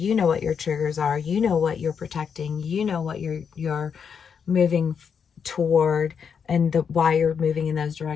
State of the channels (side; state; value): right; quieter; 6.8 dB